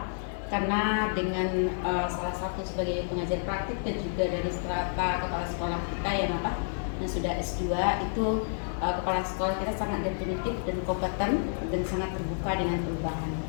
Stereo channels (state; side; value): silent; right; 58 dB below the other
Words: Karena dengan salah satu sebagai pengajar praktik dan juga dari strata kepala sekolah kita yang sudah S2 itu kepala sekolah kita sangat definitif dan kompeten dan sangat terbuka dengan perubahan.